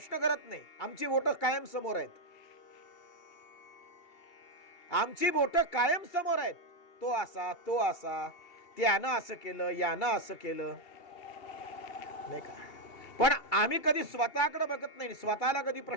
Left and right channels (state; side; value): late; right; 2.8 ms